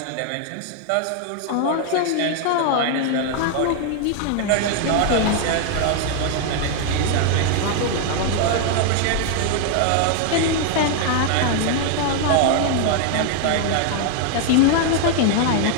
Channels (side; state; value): both; different; correlation 0.00